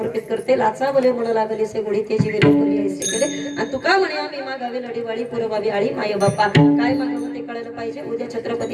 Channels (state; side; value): identical; both; correlation 1.00